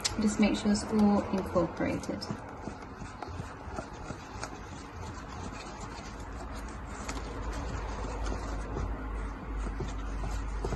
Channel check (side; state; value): both; identical; correlation 1.00